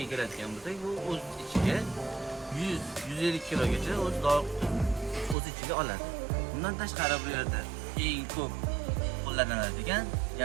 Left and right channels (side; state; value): left; drops out; at 5.4 s